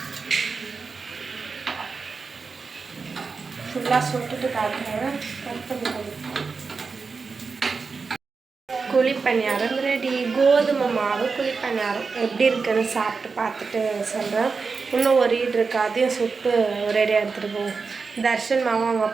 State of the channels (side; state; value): left; quieter; 4.8 dB